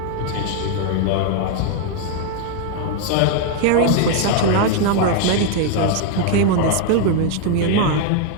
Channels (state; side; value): different; both; correlation 0.00